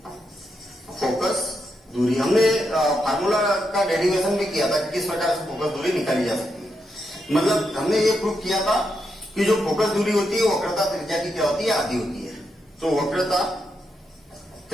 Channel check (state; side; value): normal; both; correlation 0.82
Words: दूरी। हमने फार्मूला का डेरिवेशन भी किया था कि किस प्रकार से फोकस दूरी निकाली जा सकती है। मतलब हमने ये प्रूव किया था कि जो फोकस दूरी होती है वक्रता त्रिज्या की क्या होती है, आधी होती है। तो वक्रता